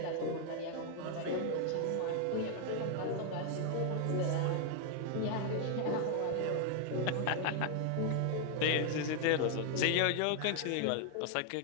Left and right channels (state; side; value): different; both; correlation 0.00